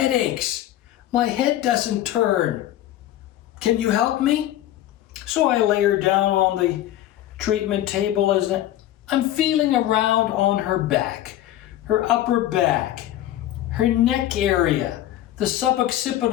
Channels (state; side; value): quieter; right; 13.2 dB